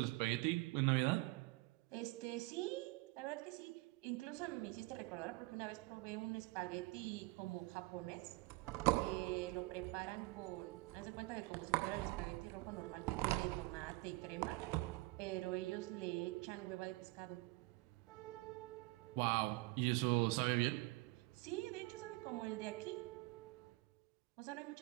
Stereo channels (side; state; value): left; quieter; 22.9 dB